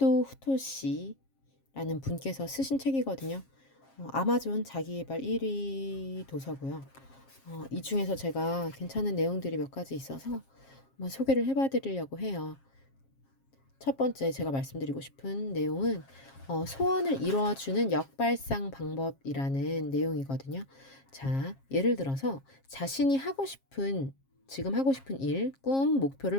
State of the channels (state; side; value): late; right; 7.4 ms